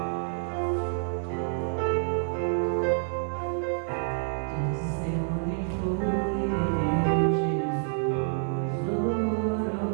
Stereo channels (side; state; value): left; silent; digital silence